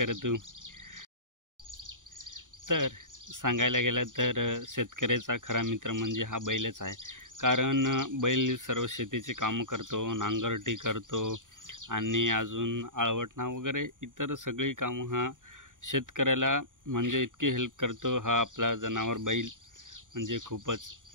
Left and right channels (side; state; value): left; late; 0.87 ms